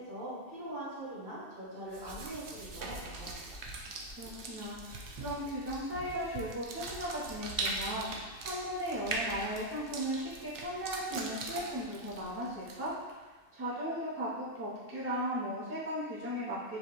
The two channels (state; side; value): late; right; 2.7 ms